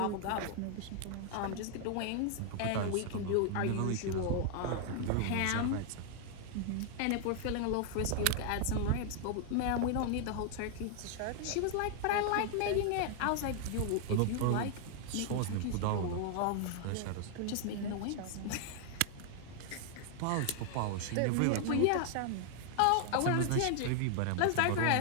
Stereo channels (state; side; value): different; both; correlation 0.00